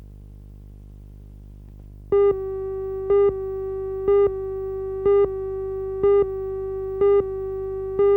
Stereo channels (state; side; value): identical; both; correlation 1.00